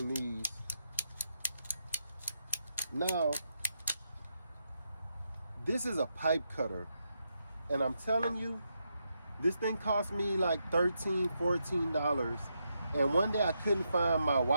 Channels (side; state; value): both; inverted; correlation -0.83